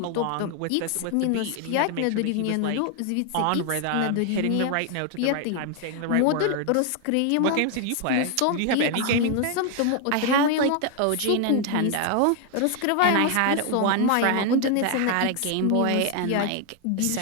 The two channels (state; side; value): different; both; correlation 0.01